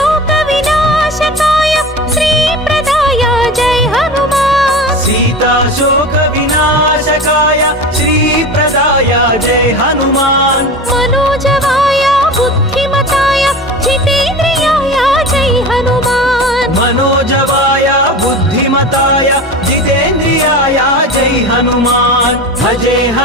विनाशकाय श्री प्रदाय जय हनुमान सीता शोक विनाशकाय श्री प्रदाय जय हनुमान मनोजवाय बुद्धिमताय जितेन्द्रियाय जय हनुमान मनोजवाय बुद्धिमताय जितेन्द्रियाय जय हनुमान भजे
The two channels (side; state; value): both; normal; correlation 0.31